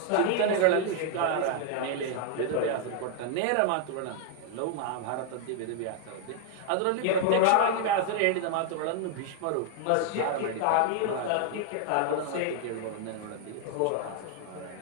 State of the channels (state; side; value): different; both; correlation 0.00